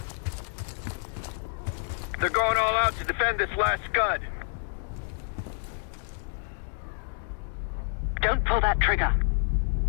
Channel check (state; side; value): silent; right; digital silence